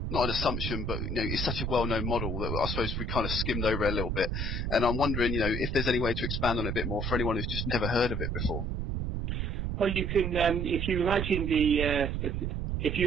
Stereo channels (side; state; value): right; noise; rumble, 1 dB below the sound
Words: not an assumption, but it's such a well-known model that I suppose we kind of skimmed over a little bit. And I'm wondering, if there's any way to expand on it a bit more for anyone who's just never heard of it before. Well, you can, if you